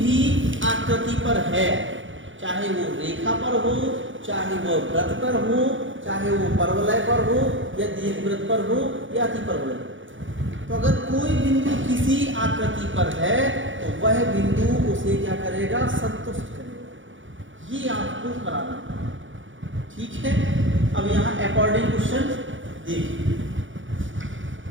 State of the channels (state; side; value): late; left; 0.56 ms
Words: आकृति पर है, चाहे वो रेखा पर हो, चाहे वो वृत्त पर हो, चाहे वो परवलय पर हो या दीर्घवृत्त पर हो या अतिपरवलय। तो अगर कोई बिंदु किसी आकृति पर है तो वह बिंदु उसे क्या करेगा, संतुष्ट करेगा। ये आपको कराना है, ठीक है। अब यहाँ अकॉर्डिंग क्वेश्चन देखिए।